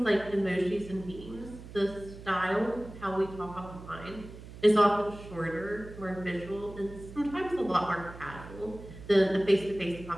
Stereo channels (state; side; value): noise; right; hum, 15 dB below the sound